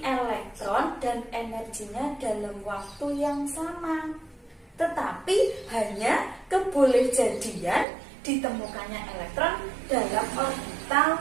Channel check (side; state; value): left; drops out; at 7.9 s